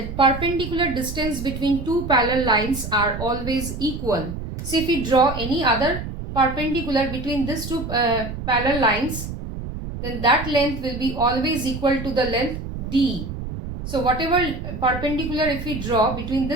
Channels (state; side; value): noise; right; rumble, 7 dB below the sound